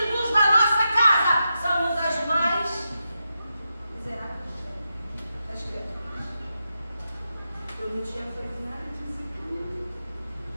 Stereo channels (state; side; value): inverted; both; correlation -0.88